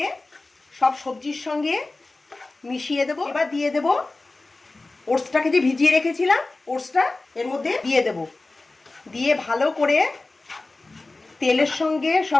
সব সবজির সঙ্গে মিশিয়ে দেব। এবার দিয়ে দেব ওটসটাকে যে ভিজিয়ে রেখেছিলাম, ওটসটা এর মধ্যে দিয়ে দেব। দিয়ে ভালো করে তেলের সঙ্গে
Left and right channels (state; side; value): quieter; right; 3.2 dB